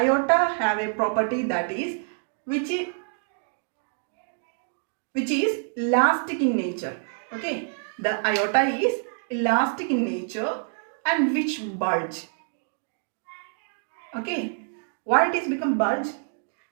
have a property that is which is elastic in nature. Okay, the aorta is elastic in nature and which bulge. Okay, why it is become bulge?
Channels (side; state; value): left; silent; digital silence